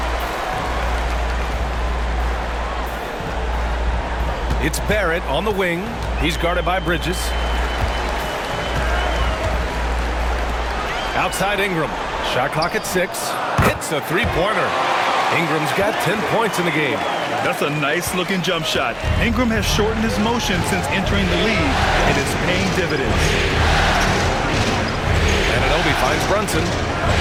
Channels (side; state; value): both; identical; correlation 1.00